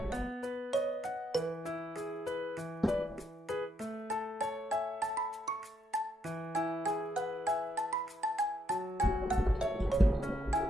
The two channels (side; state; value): both; normal; correlation 0.76